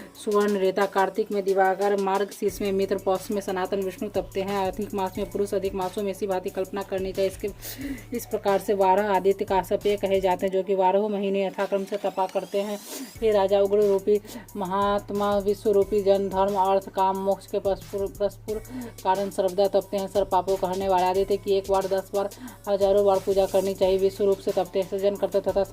सुवर्ण रेता कार्तिक में दिवाकर मार्ग शीर्ष में मित्र पौष में सनातन विष्णु तपते हैं अधिक मास में पुरुष अधिक मासों में इसी भांति कल्पना करनी चाहिए इस प्रकार से 12 आदित्य काश्यपेय कहे जाते हैं जो कि 12 महीने यथाक्रम से तपा करते हैं हे राजा उग्र रूपी महात्मा विश्व रूपी जन धर्म अर्थ काम मोक्ष के परस्पर कारण सर्वदा तपते हैं सर्व पापों कहने वाले आदित्य की 1 बार 10 बार हजारों बार पूजा करनी चाहिए विश्व रूप से तपते हैं सृजन करता तथा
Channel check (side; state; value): both; identical; correlation 1.00